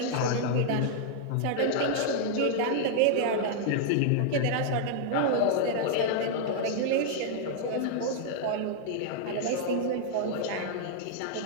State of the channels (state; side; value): different; both; correlation -0.01